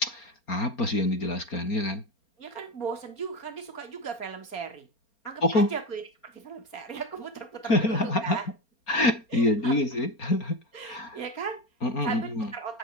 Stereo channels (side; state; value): right; late; 4.3 ms